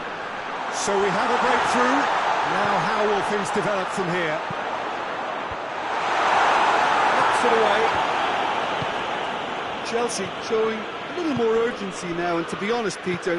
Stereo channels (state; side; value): identical; both; correlation 1.00